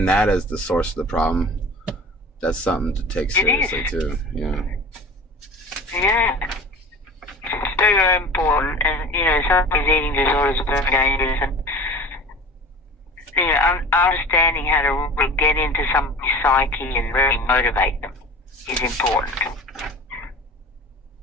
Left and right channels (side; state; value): both; normal; correlation 0.39